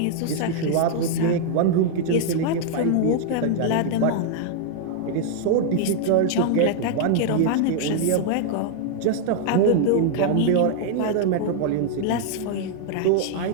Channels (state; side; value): different; both; correlation -0.01